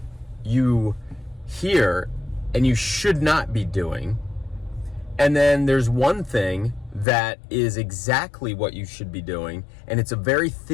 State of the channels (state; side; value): drops out; right; at 7.1 s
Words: you hear and you should not be doing. And then there's one thing that is exactly what you should be doing, and it's a very